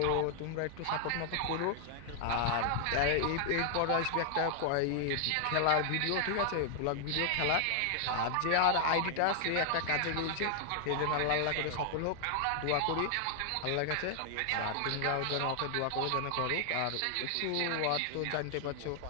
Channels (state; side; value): different; both; correlation 0.00